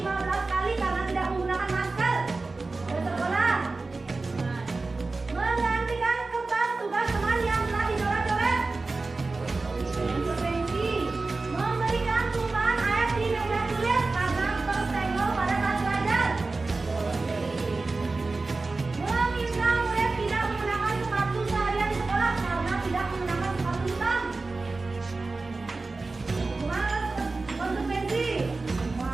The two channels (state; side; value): quieter; left; 3.6 dB